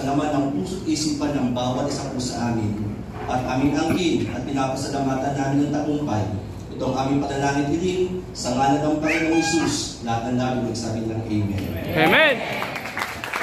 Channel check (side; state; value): both; identical; correlation 1.00